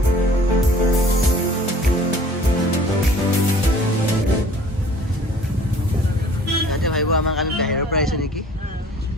তাতে ভাবিব আমাক আমি বাহিৰৰ পৰা আহিছোঁ নেকি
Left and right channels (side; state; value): both; normal; correlation 0.51